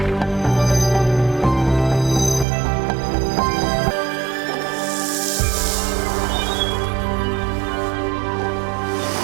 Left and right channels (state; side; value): drops out; left; at 2.5 s